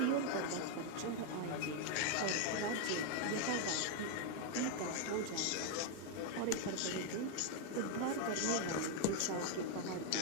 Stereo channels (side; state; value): both; different; correlation 0.00